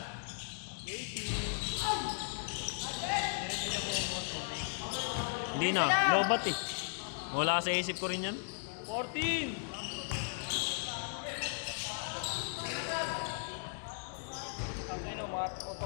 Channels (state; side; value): silent; right; digital silence